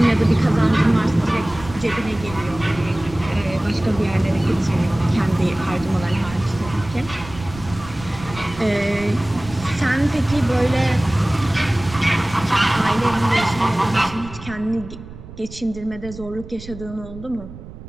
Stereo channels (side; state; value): right; noise; rumble, 14 dB below the sound